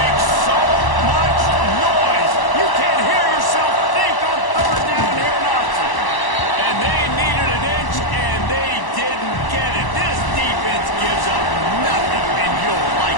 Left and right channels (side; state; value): right; late; 1.0 ms